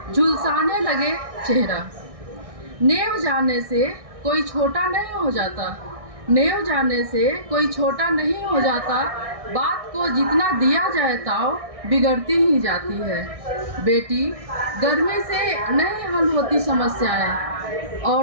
झुलसाने लगे चेहरा। नेव जाने से कोई छोटा नहीं हो जाता, नेव जाने से कोई छोटा नहीं हो जाता। बात को जितना दिया जाए ताव बिगड़ती ही जाती है। बेटी, गर्मी से नहीं हल होती समस्याएं,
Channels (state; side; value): late; left; 1.6 ms